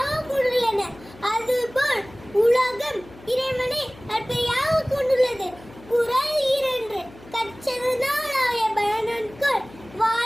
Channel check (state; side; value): noise; left; hum, 21 dB below the sound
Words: கொண்டுள்ளன. அதுபோல் உலகம் இறைவனை அடிப்படையாக கொண்டுள்ளது. குறள் 2 கற்றதனால் பயனன்கொள்